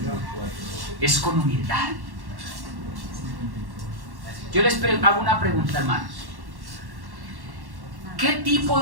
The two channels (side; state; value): left; late; 1.1 ms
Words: Es con humildad. Yo les hago una pregunta, hermanos. ¿Qué tipo